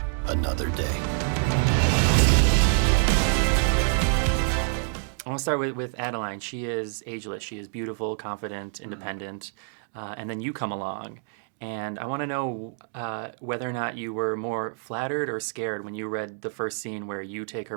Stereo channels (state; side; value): silent; left; 60 dB below the other